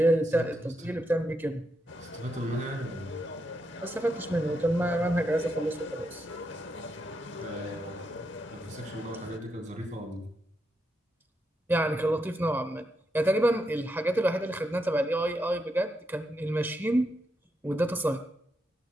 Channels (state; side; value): normal; both; correlation 0.82